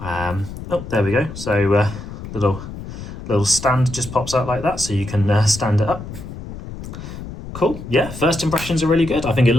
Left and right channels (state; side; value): noise; left; rumble, 11 dB below the sound